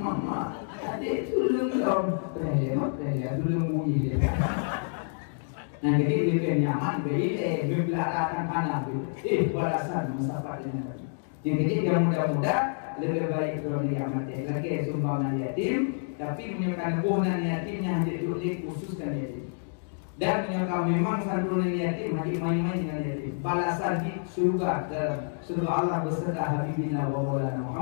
mama adik sulung dong, tanya sulung bunyi dia. Nah jadi lebih nyaman bagi membelakangkan panah itu. Balasan masalah ini. Jadi yang muda-muda lebih baik kalau dia mati. Lagi sumbangan yatim, tapi menyebabkan kebunan yatimnya hanya khususkan yatim. Dan menyebabkan memang santunan yatim hanya main-main dengan yatim. Balasan di surga dalam surga Allah beserta Habibina wa Maulana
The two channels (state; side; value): silent; right; digital silence